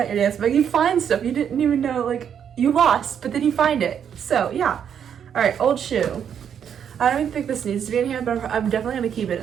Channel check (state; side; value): quieter; left; 8.3 dB